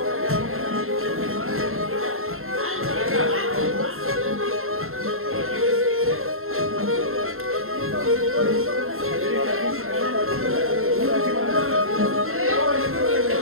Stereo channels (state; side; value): late; left; 0.61 ms